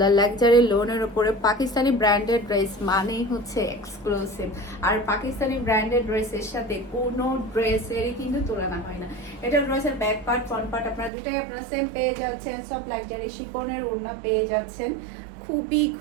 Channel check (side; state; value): left; drops out; at 11.1 s